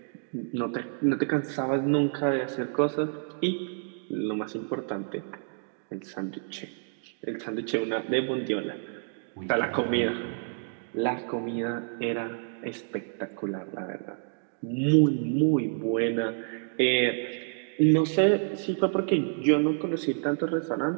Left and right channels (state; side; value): silent; left; digital silence